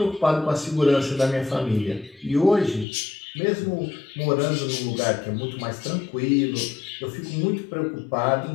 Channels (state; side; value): drops out; right; at 2.9 s